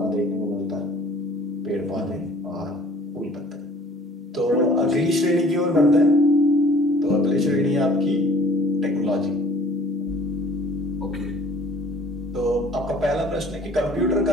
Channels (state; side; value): normal; both; correlation 0.52